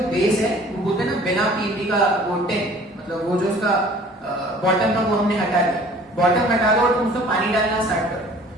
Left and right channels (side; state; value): both; normal; correlation 0.50